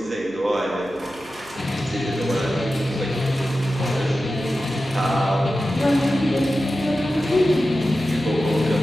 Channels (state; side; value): noise; right; hum, 24 dB below the sound